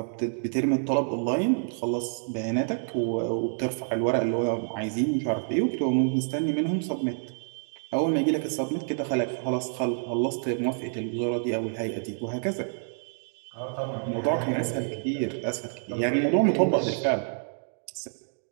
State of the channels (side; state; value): left; silent; digital silence